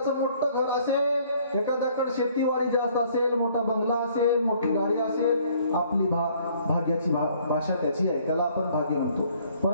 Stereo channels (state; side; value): inverted; both; correlation -0.60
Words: मोठं घर असेल, एखाद्याकडे शेतीवाडी जास्त असेल, मोठा बंगला असेल, मोठी गाडी असेल, आपली भाग्याची भाषा त्याची आहे, त्याला आपण भाग्य म्हणतो.